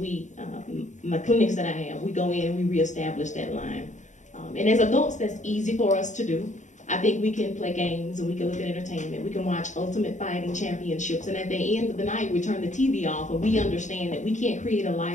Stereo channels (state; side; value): late; right; 0.35 ms